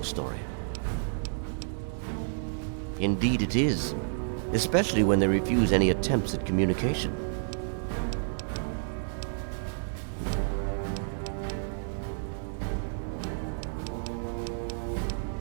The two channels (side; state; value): left; silent; digital silence